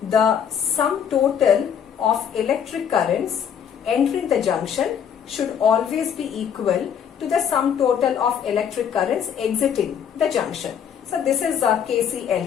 the sum total of electric currents entering the junction should always be equal to the sum total of electric currents exiting the junction. So this is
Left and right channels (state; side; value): quieter; right; 8.2 dB